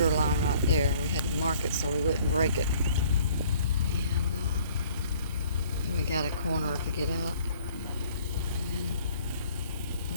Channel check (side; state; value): both; inverted; correlation -0.56